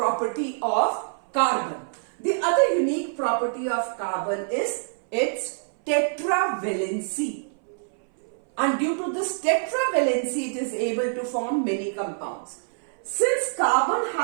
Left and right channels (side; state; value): left; silent; 59 dB below the other